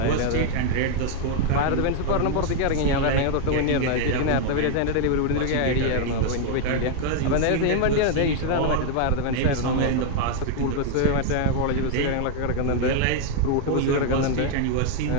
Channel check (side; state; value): both; different; correlation 0.00